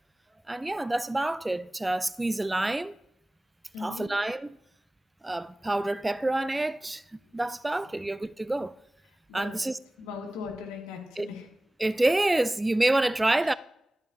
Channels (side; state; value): both; normal; correlation 0.98